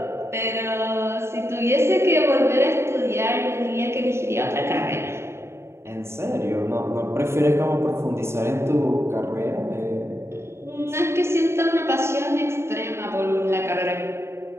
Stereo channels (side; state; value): left; late; 0.13 ms